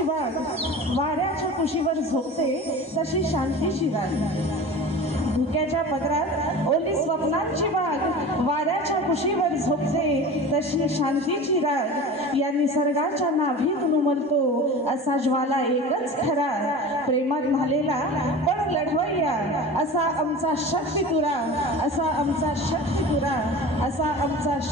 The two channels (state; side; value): normal; both; correlation 0.35